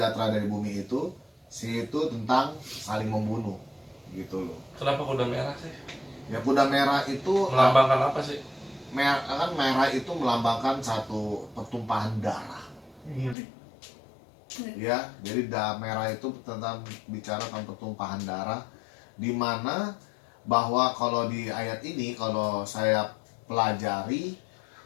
dari bumi itu? Itu tentang saling membunuh, gitu loh. Kenapa kuda merah sih? Ya kuda merah itu Melambangkan apa sih? merah itu melambangkan satu pertumpahan darah. Ya, jadi merah itu tentang bicara tentang pertumpahan darah, di mana bahwa kalau di ayat ini kalau saya pelajari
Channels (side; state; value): right; drops out; at 13.4 s